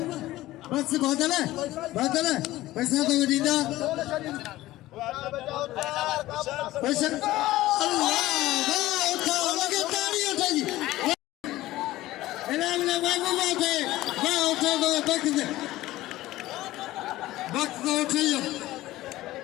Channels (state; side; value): quieter; right; 16.5 dB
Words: बस बहुत है पैसा तो दीदा पैसा अल्लाह उठा लगे ताली उठा जी इन्हें महबूबा पे वाह उठा दो वक्त तो उठे जो